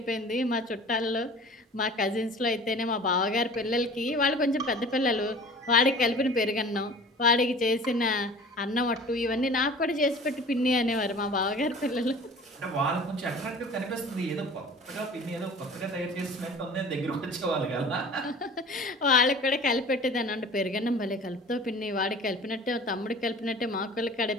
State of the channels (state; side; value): normal; both; correlation 0.43